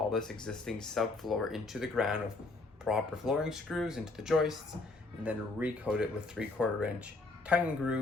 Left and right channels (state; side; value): quieter; right; 3.3 dB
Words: this existing subfloor into the ground with proper flooring screws into the joists, and then recoat it with 3/4 inch tongue and